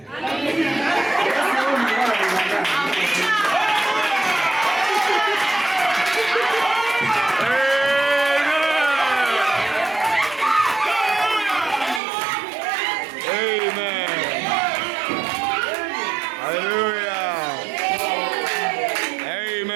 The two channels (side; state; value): left; drops out; at 12.0 s